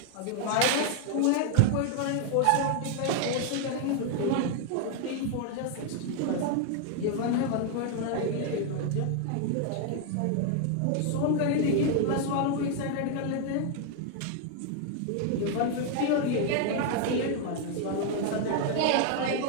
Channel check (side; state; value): both; different; correlation 0.00